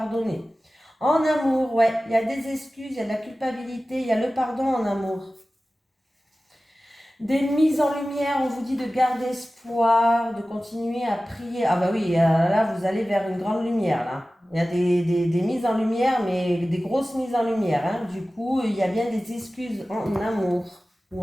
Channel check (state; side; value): normal; both; correlation 0.96